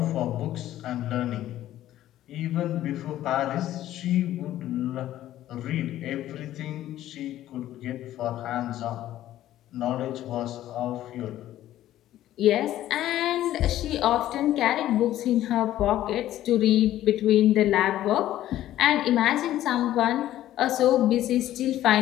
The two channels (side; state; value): right; quieter; 13.4 dB